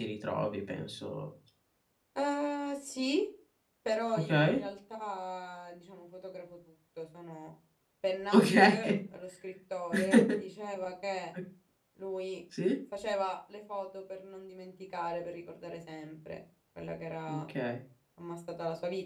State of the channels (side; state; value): both; identical; correlation 1.00